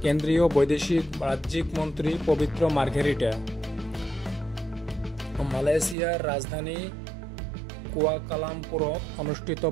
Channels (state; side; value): drops out; left; at 6.0 s